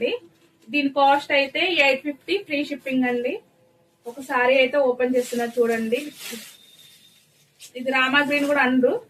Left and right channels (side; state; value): both; identical; correlation 1.00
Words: దీని కాస్ట్ అయితే 850 ఫ్రీ షిప్పింగ్ అండి. ఒక సారీ అయితే ఓపెన్ చేస్తున్నా చూడండి. ఇది రామా గ్రీన్ కూడా అండ్రు,